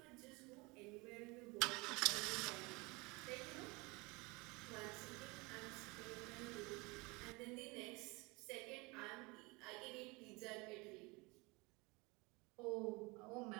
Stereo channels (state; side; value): quieter; left; 25.8 dB